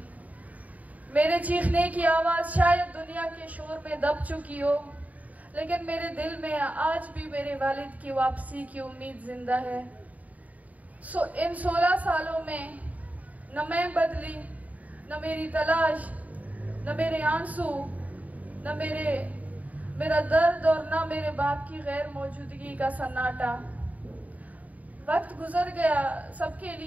मेरे चीखने की आवाज़ शायद दुनिया के शोर में दब चुकी हो, लेकिन मेरे दिल में आज भी मेरे वालिद की वापसी की उम्मीद जिंदा है। इन 16 सालों में न मैं बदली, न मेरी तलाश, न मेरे आंसू, न मेरा दर्द और न मेरे बाप की गैर मौजूदगी का सन्नाटा। वक्त गुजर गया सबके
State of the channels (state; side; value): late; left; 0.072 ms